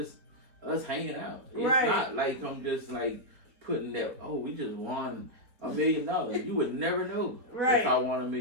us hanging out. It's not like I'm just like putting that, oh, we just won $1 million. You would never know if I won $1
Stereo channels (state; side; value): late; left; 4.3 ms